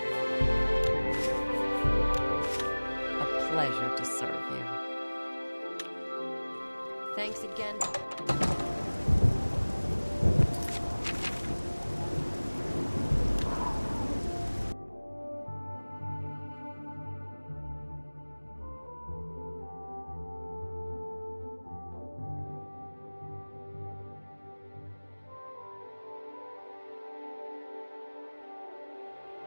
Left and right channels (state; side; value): inverted; both; correlation -1.00